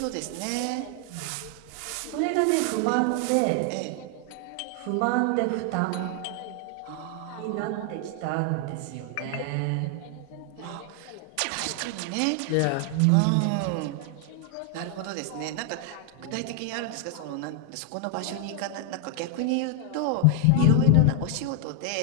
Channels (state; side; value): different; both; correlation 0.00